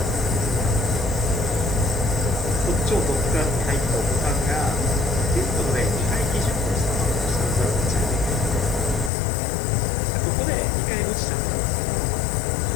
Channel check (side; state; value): right; drops out; at 9.1 s